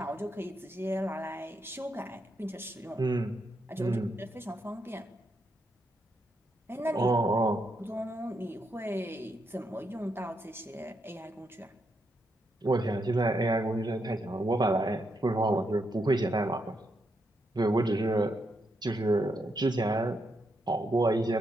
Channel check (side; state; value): both; normal; correlation 0.80